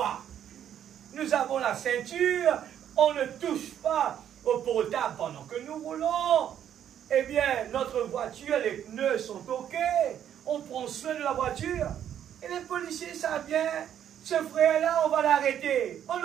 Nous avons la ceinture, on ne touche pas au portable pendant que nous roulons. Eh bien, notre voiture, les pneus sont OK. On prend soin de la voiture. Et les policiers savent bien, ce frère-là, on va l'arrêter. On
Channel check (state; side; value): quieter; left; 9.9 dB